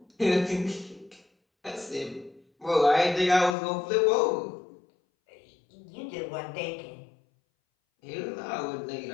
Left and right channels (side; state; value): right; drops out; at 3.6 s